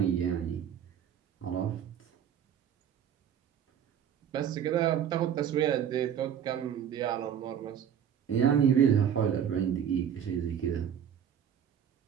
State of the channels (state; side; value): quieter; left; 8.9 dB